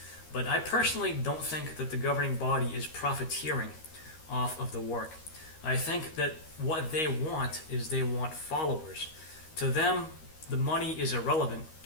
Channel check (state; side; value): late; right; 13 ms